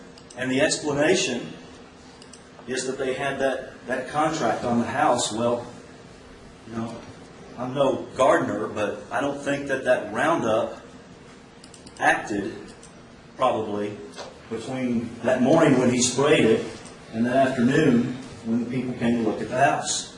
And the explanation is that they had that contract on the house. Well, you know, I'm no gardener, but I don't think that Roundup acted probably between that morning when he sprayed it and that afternoon when the people came to look at the house.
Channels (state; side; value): identical; both; correlation 1.00